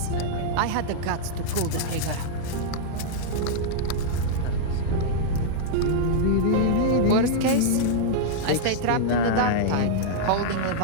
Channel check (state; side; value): different; both; correlation -0.01